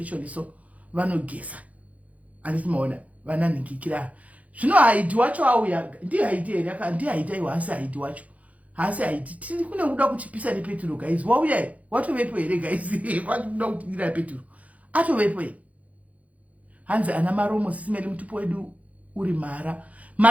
so vanogeza. Anditi maona vana ningikira. Zvino haiti wacho auya, ndiye haiti here, ndiye haiti aiwa hasi haiti wacho. Hasi haiti tiri kune kuda kuchipisa nepeturo guys. Wauya watovepo here guys. Kwatoda kutingira peturo. Atovepo here. Hanzi ana maromo sisimeli mutupo wedu uri mara.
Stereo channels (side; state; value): left; late; 0.069 ms